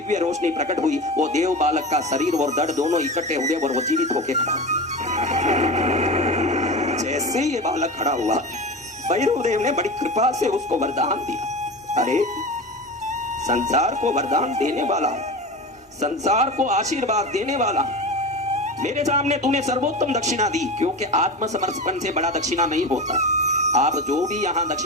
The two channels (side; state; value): both; normal; correlation 0.27